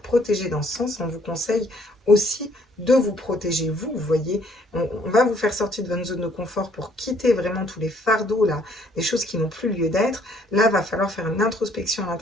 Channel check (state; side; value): normal; both; correlation 0.64